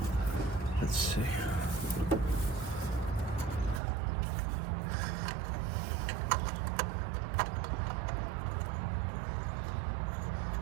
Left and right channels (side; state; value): left; drops out; at 3.8 s